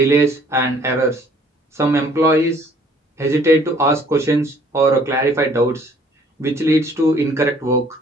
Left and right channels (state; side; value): normal; both; correlation 0.58